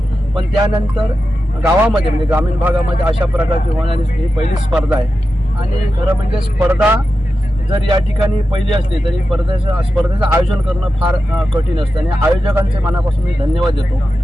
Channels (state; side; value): normal; both; correlation 0.91